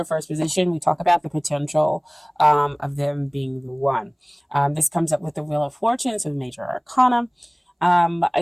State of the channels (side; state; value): both; identical; correlation 1.00